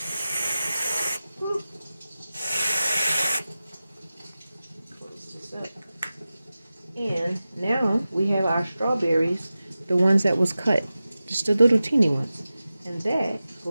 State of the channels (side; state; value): both; inverted; correlation -0.95